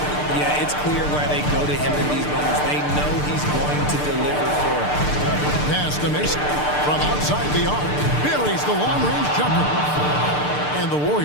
Yeah, it's clear why they go to him in these moments. They know he's going to deliver for them. Pass to Mason. From outside the arc, buries the long-range jumper. And the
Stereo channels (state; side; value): late; right; 6.7 ms